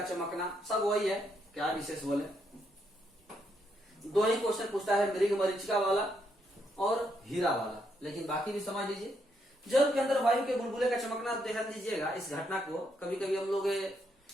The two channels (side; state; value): both; normal; correlation 0.77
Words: चमकना, सब वही है, क्या विशेष बोले। दो ही क्वेश्चन पूछता है, मृग मरीचिका वाला और हीरा वाला, लेकिन बाकी भी समझ लीजिए। जल के अंदर वायु के बुलबुले का चमकना, ध्यान दीजिएगा इस घटना को। कभी कभी हम लोग